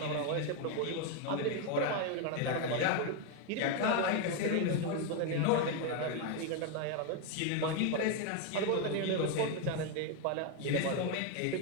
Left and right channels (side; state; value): both; different; correlation 0.01